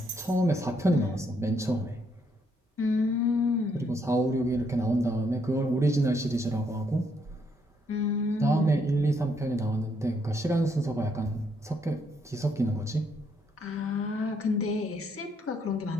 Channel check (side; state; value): both; normal; correlation 0.73